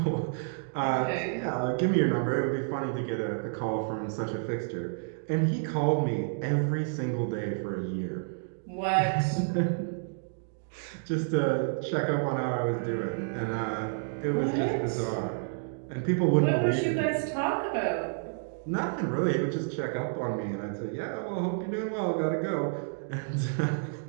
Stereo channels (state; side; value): silent; left; digital silence